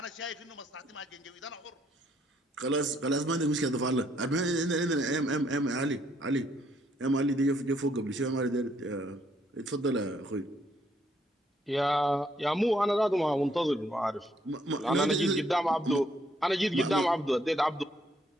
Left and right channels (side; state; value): both; normal; correlation 0.70